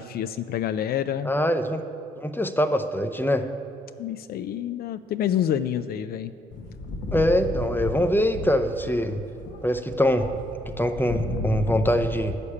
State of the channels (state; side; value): normal; both; correlation 0.72